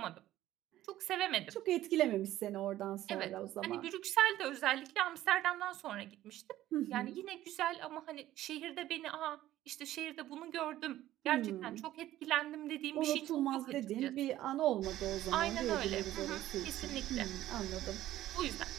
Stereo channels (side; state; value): left; quieter; 14.2 dB